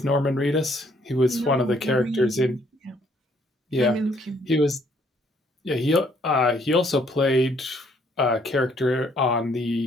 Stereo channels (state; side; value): normal; both; correlation 0.66